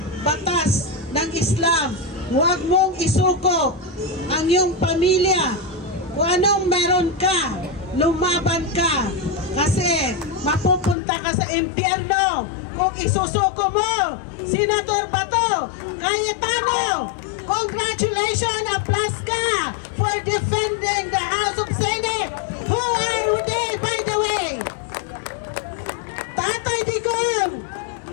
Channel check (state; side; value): drops out; right; at 11.0 s